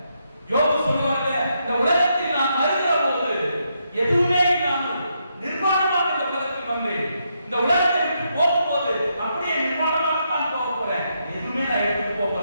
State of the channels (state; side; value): inverted; both; correlation -0.80